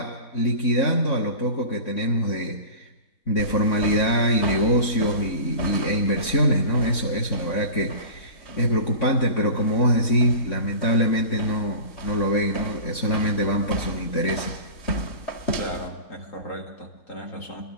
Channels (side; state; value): right; late; 3.7 ms